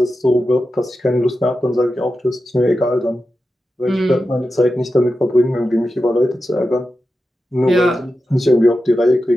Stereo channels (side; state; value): both; normal; correlation 0.91